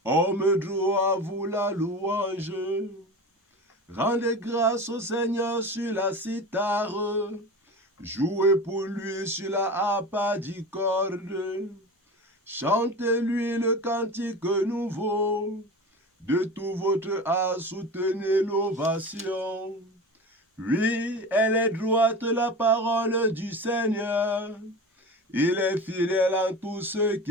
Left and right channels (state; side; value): normal; both; correlation 0.31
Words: Homme droit, vous la louange. Rendez grâce au Seigneur sur la cithare. Jouez pour lui sur la harpe d'icorde. Chantez-lui le cantique nouveau. De tout votre art, soutenez l'ovation. Oui, elle est droite la parole du Seigneur. Il est fidèle en tout ce